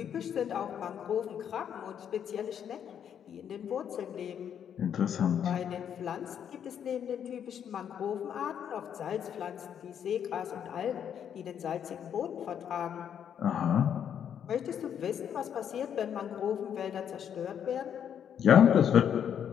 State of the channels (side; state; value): right; quieter; 8.7 dB